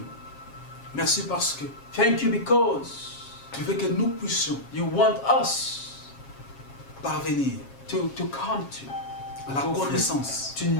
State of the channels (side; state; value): right; late; 7.3 ms